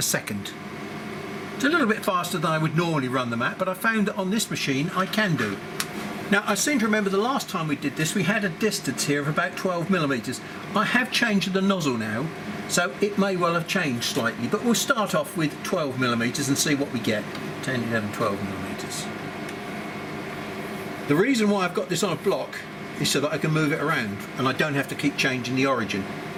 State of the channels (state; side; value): identical; both; correlation 1.00